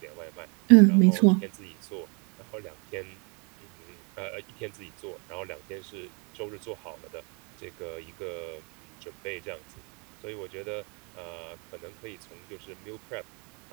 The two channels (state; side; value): quieter; left; 33.6 dB